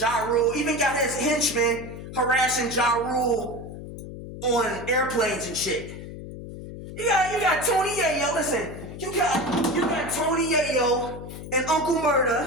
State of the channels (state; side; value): noise; left; hum, 11 dB below the sound